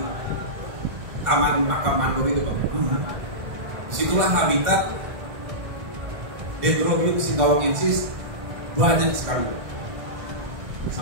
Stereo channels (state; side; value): late; left; 1.5 ms